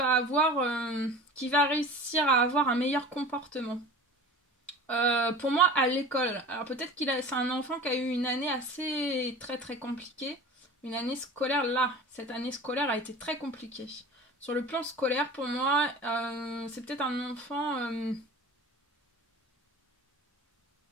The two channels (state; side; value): normal; both; correlation 0.38